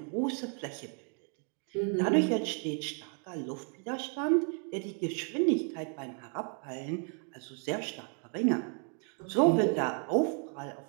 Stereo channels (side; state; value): left; quieter; 39.3 dB